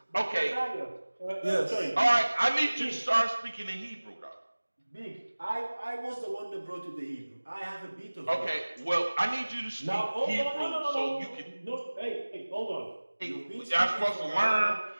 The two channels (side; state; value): both; inverted; correlation -1.00